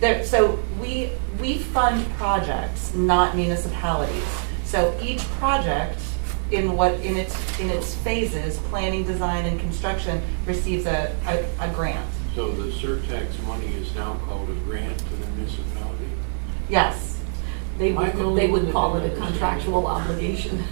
So we fund projects, not municipalities. So each project in its phases, planning, design, and construction, receives a grant. So the Surtax money is now called a grant to the municipality? Yes. They would call it a contractual obligation.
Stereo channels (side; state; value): left; silent; 63 dB below the other